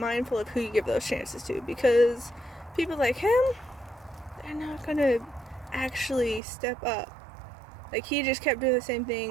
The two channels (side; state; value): left; drops out; at 6.4 s